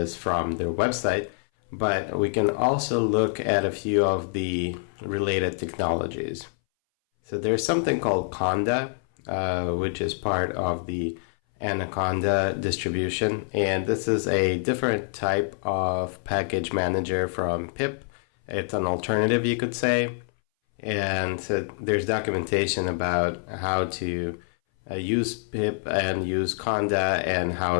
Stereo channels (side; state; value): right; silent; 60 dB below the other